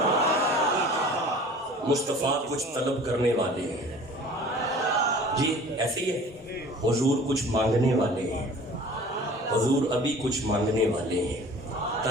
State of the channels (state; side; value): normal; both; correlation 0.46